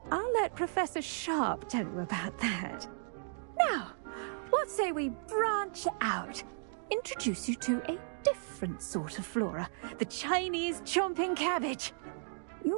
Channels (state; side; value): silent; left; digital silence